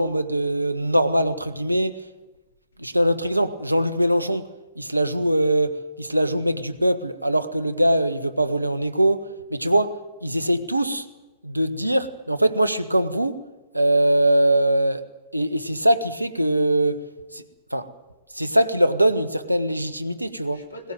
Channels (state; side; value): inverted; both; correlation -0.90